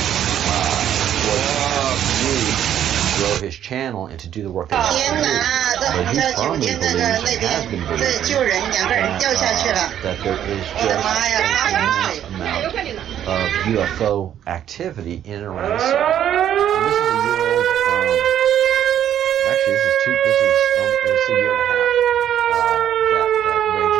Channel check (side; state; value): left; quieter; 10.4 dB